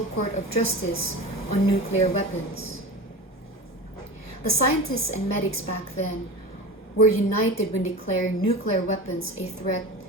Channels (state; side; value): normal; both; correlation 0.30